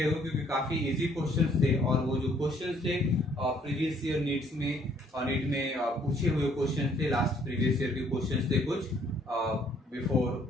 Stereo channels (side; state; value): both; normal; correlation 0.64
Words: हो, क्योंकि काफी इजी क्वेश्चंस थे और वो जो क्वेश्चंस थे प्रीवियस ईयर नीट में पूछे हुए क्वेश्चंस थे। लास्ट प्रीवियस ईयर के क्वेश्चंस थे कुछ बिफोर